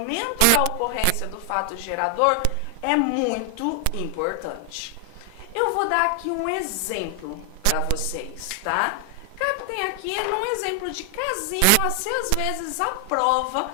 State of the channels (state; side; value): different; both; correlation 0.00